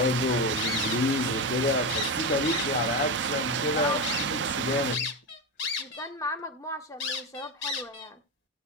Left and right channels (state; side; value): normal; both; correlation 0.15